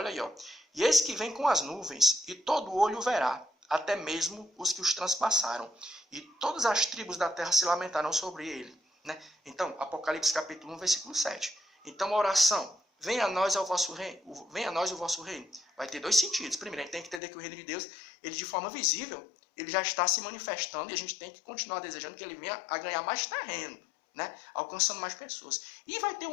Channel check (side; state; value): right; drops out; at 17.2 s